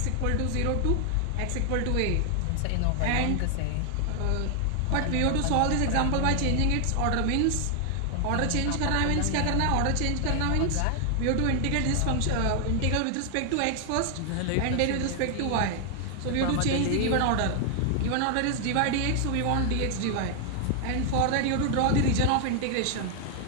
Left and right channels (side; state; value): both; different; correlation 0.00